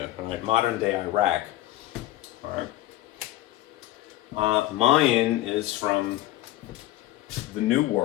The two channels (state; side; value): quieter; right; 15.3 dB